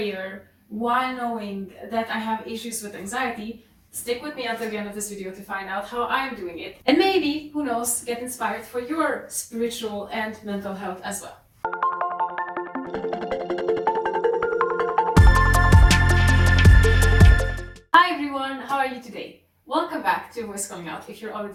while knowing that I have issues with anxiety, stick with me until the end of this video to find out how I'm doing it. And maybe, who knows, get inspired for your spiritual and mental health as well. Hi everyone, how are you today? Welcome back to Voice Calling Out if you're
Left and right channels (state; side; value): identical; both; correlation 1.00